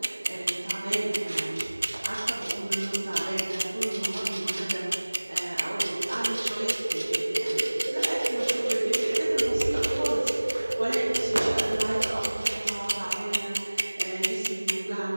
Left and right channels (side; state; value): both; inverted; correlation -1.00